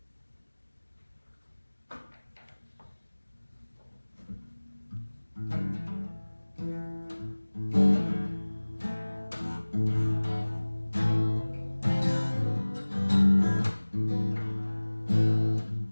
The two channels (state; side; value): inverted; both; correlation -1.00